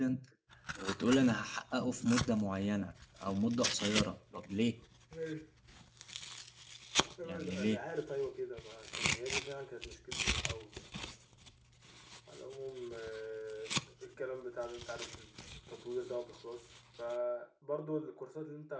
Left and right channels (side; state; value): both; identical; correlation 1.00